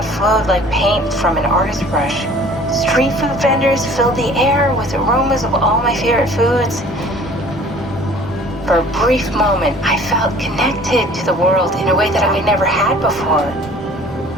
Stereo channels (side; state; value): both; normal; correlation 0.50